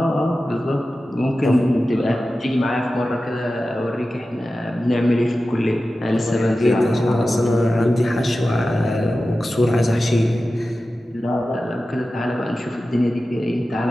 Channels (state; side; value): normal; both; correlation 0.94